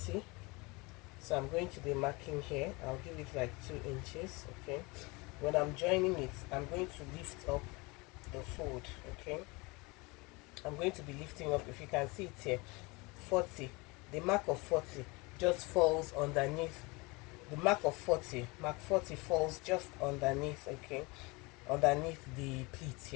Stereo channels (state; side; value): quieter; right; 25.9 dB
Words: So I'm going to be marking here. I'll give it like 2 inches. Okay, when I'm joining it, I'm going to lift up the fold. Okay, I'm going to be lifting up. If you can see it here, 40, the mark of 40 just falls underneath. The mark of 40, mark 40 falls just underneath. Okay, underneath the pleat